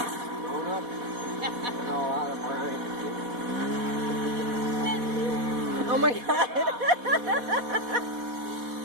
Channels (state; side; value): late; left; 4.1 ms